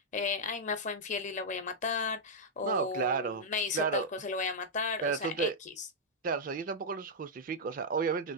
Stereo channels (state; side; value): normal; both; correlation -0.05